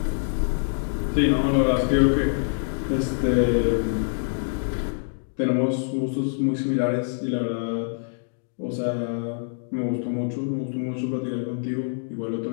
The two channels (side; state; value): right; silent; digital silence